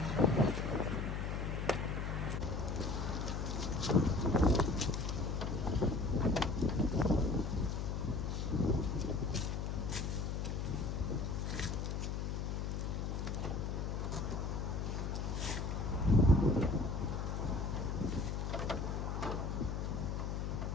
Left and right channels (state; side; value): noise; left; hum, 1 dB below the sound